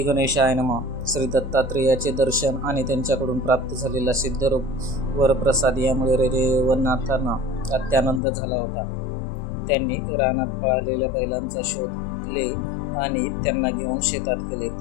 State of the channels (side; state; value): right; drops out; at 8.2 s